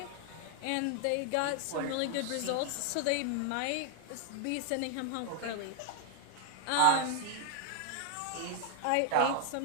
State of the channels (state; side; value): different; both; correlation 0.00